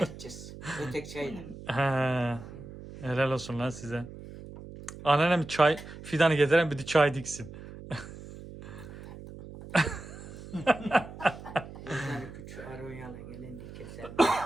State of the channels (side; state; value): right; noise; hum, 14 dB below the sound